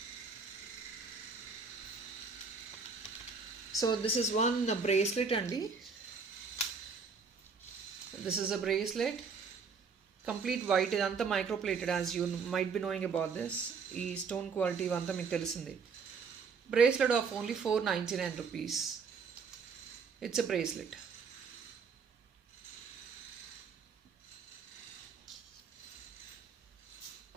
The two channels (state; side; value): quieter; left; 5.3 dB